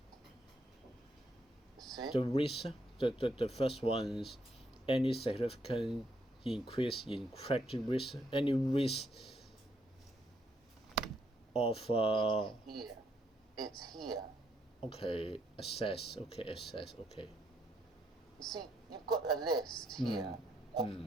See? The risk, the first one's any significant increase in credit risk, any risk of It's here. Okay, assess. Okay. You see, you've got a list here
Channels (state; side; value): normal; both; correlation 0.75